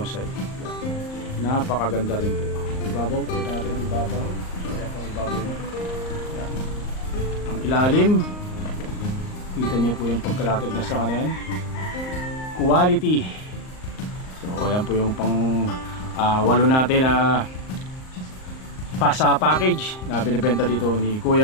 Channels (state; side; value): late; right; 38 ms